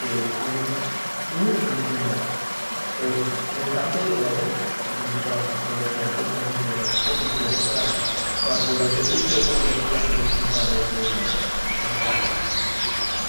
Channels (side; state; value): both; inverted; correlation -1.00